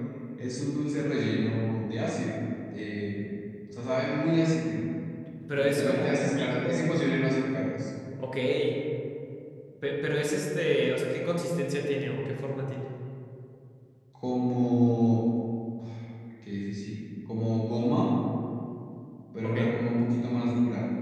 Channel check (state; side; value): identical; both; correlation 1.00